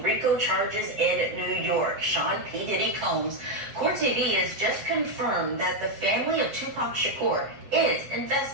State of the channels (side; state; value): left; late; 7.6 ms